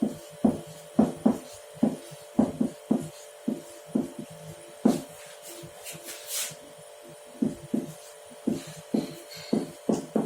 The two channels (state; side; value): identical; both; correlation 1.00